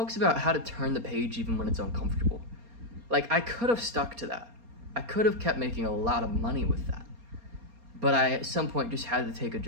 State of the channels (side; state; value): left; late; 4.3 ms